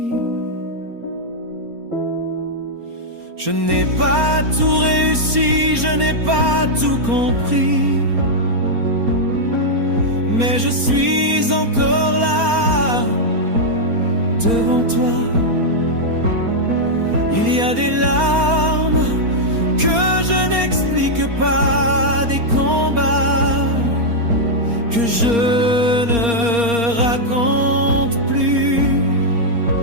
Je n'ai pas tout réussi, je n'ai pas tout compris, mais je suis encore là, devant toi. Il y a des larmes que je n'explique pas, des combats que je ne raconte plus.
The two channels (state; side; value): late; left; 4.3 ms